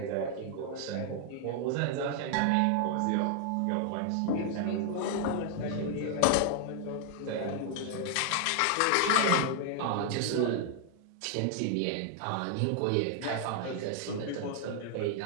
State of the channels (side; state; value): both; different; correlation 0.00